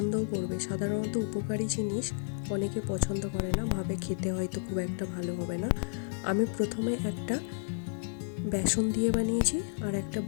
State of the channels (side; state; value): right; silent; digital silence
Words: করবে। সাধারণত উপকারী জিনিস অনেকে পছন্দ করে না, ভাবে খেতে হয়তো খুব একটা ভালো হবে না। আমি প্রথমে একটা বেসন দিয়ে বানিয়েছি আর একটা